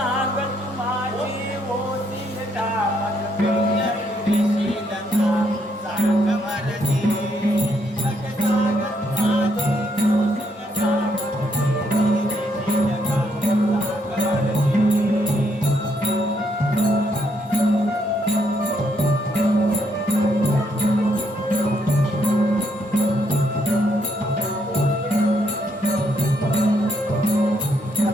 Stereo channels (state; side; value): normal; both; correlation 0.74